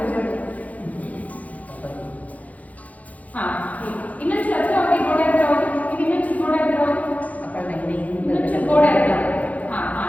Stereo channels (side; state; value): right; late; 0.072 ms